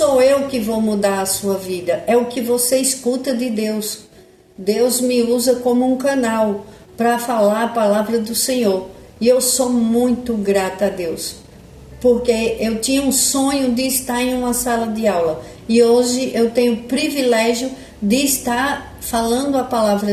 eu que vou mudar a sua vida, é o que você escuta de Deus. Deus me usa como um canal para falar a palavra do Senhor. E eu sou muito grata a Deus, porque eu tinha um sonho de estar em uma sala de aula. E hoje eu tenho o privilégio de estar falando a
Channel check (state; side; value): identical; both; correlation 1.00